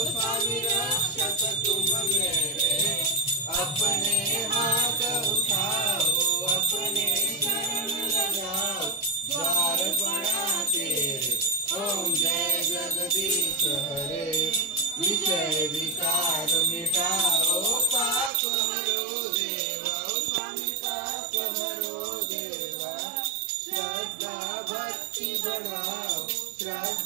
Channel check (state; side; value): drops out; left; at 18.3 s